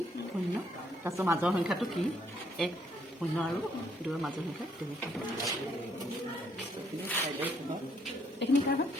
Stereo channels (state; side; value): normal; both; correlation 0.69